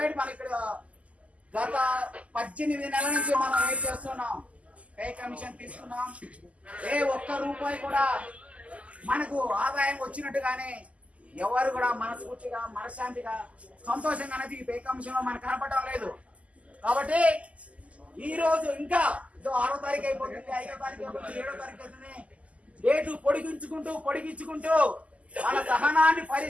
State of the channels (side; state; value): left; late; 0.067 ms